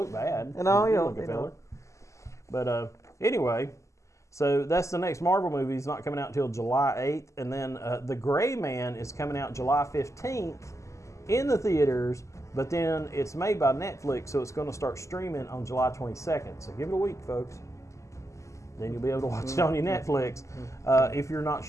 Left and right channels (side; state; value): right; late; 0.15 ms